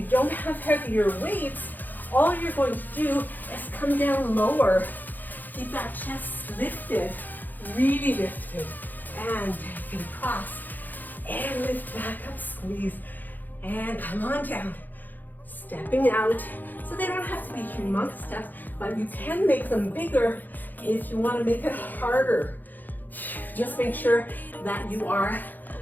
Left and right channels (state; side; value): late; right; 0.086 ms